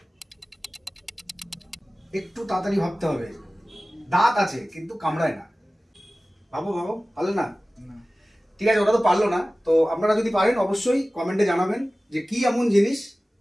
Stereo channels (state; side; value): normal; both; correlation 0.97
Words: একটু তাড়াতাড়ি ভাবতে হবে। দাঁত আছে কিন্তু কামড়ায় না। ভাবো ভাবো, পারলে না? ঠিক আছে, ওটা তো পারলো না। তো আপনারা যদি পারেন অবশ্যই কমেন্টে জানাবেন যে কি এমন জিনিস